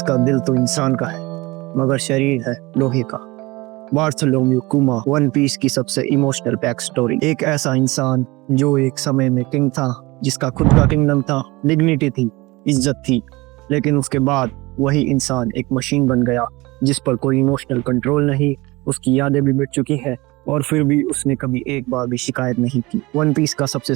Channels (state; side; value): quieter; left; 22.2 dB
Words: दिल तो इंसान का है मगर शरीर है लोहे का। बार्थोलोम्यू कुमा वन पीस की सबसे इमोशनल बैक स्टोरी। एक ऐसा इंसान जो एक समय में किंग था, जिसका खुद का किंगडम था, डिग्निटी थी, इज्जत थी, लेकिन उसके बाद वही इंसान एक मशीन बन गया जिस पर कोई इमोशनल कंट्रोल नहीं। उसकी यादें भी मिट चुकी है और फिर भी उसने कभी एक बार भी शिकायत नहीं की। वन पीस का सबसे